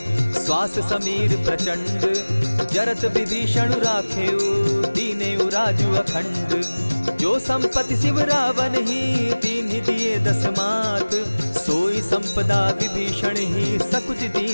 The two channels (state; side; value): inverted; both; correlation -1.00